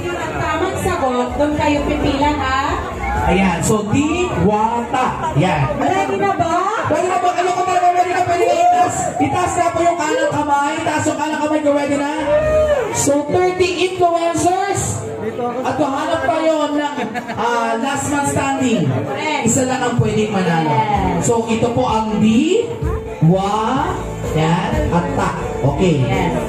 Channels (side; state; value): both; identical; correlation 1.00